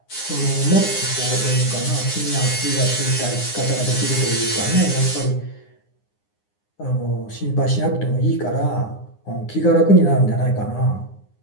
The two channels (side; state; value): right; late; 9.8 ms